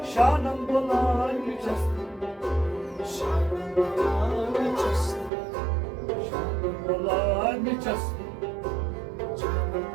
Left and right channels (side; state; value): left; drops out; at 5.3 s